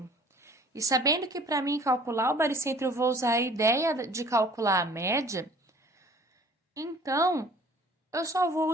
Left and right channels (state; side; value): normal; both; correlation 0.51